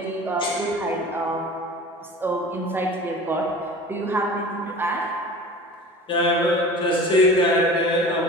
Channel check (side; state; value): both; normal; correlation 0.39